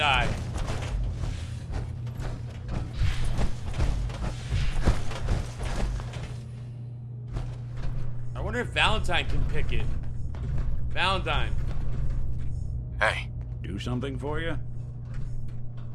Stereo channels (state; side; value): identical; both; correlation 1.00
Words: I wonder if Valentine can pick it. Valentine. Hey, Do something for you?